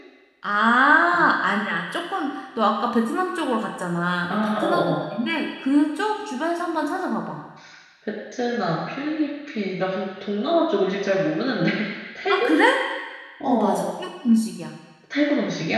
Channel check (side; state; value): both; identical; correlation 1.00